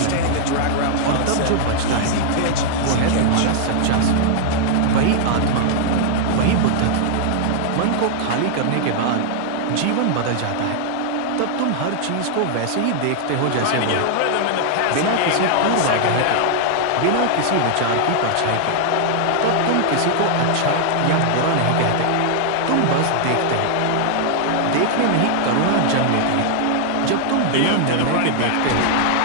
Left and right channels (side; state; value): both; different; correlation -0.01